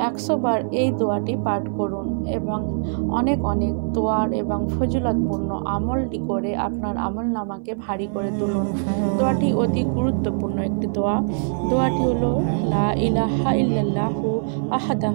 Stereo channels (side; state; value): left; silent; 59 dB below the other